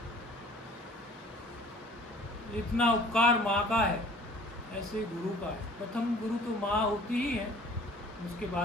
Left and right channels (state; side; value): normal; both; correlation 0.50